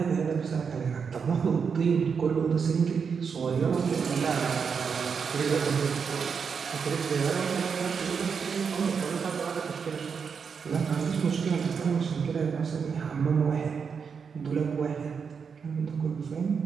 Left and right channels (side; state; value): left; quieter; 6.1 dB